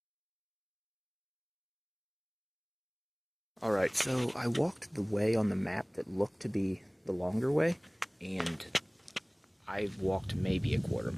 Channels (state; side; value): identical; both; correlation 1.00